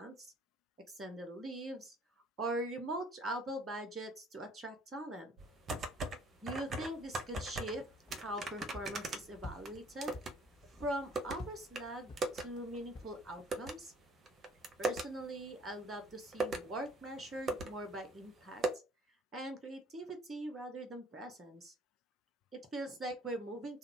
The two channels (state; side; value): normal; both; correlation 0.57